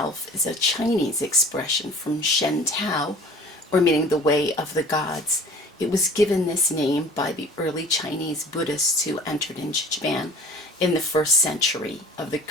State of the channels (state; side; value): normal; both; correlation 0.46